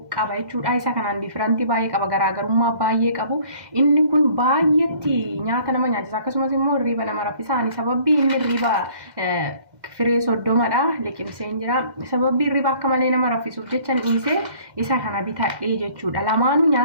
qaba jechuudha. Isa kanaan difirantii baay'ee qaba, garaagarummaa baay'ee qabu. Inni kun baay'eetti nyaata nama nyaachisa, akkasumas immoo hirriba nama raffisa. Sababbii inni hirriba firee soddomadha liqimseen jira. Sababbii hirriba akka malee nama raffisuuf jecha dhiisee isa kana bitadhee jechuudha. Lamaanuu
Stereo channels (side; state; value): left; late; 2.0 ms